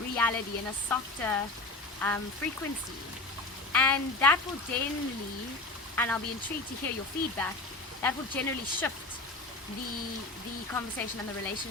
and a softer frequency. And that will generally, and I'll be intrigued to hear your feedback, that will generally shift the conversation and the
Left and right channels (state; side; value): quieter; right; 3.1 dB